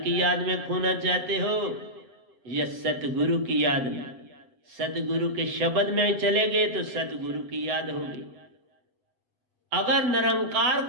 याद में खोना चाहते हो या सतगुरु की याद में? सतगुरु के शब्द में चले गए तो सतगुरु की याद होगी। अगर निरंकार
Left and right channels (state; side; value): late; left; 7.6 ms